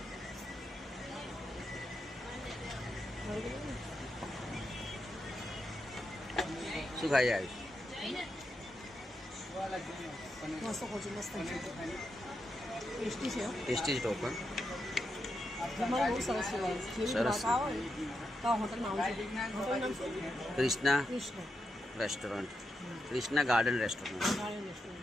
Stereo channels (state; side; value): normal; both; correlation 0.85